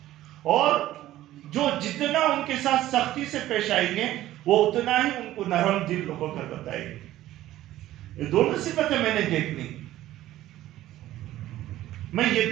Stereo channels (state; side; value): quieter; left; 14.5 dB